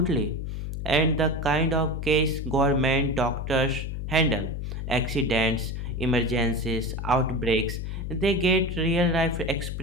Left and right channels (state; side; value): noise; left; hum, 5 dB below the sound